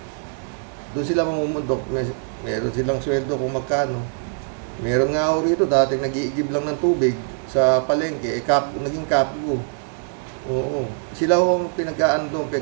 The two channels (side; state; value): left; silent; digital silence